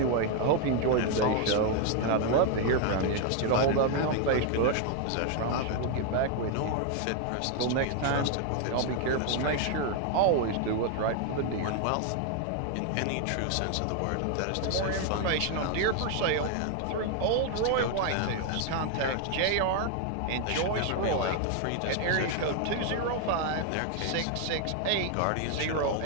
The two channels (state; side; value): different; both; correlation 0.00